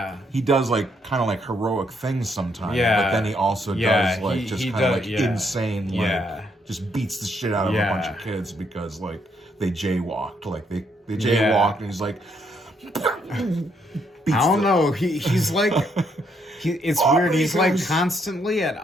He does like kind of like heroic things sometimes. Yeah. But then he also does like just kind of like insane. Yeah. Like just beats the shit out of a bunch of kids because like they jaywalked. Like they jaywalked and he's like. I don't know. He's like. It's weird. He's like constantly at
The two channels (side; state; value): both; normal; correlation 0.73